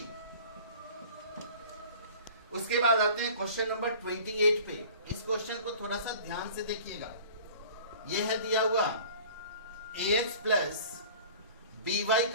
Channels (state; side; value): inverted; both; correlation -0.44